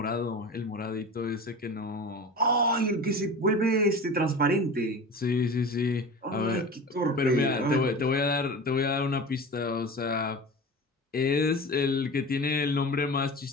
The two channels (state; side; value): normal; both; correlation 0.32